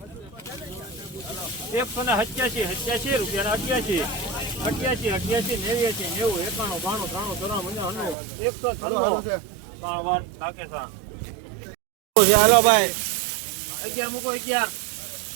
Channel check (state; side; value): drops out; left; at 8.2 s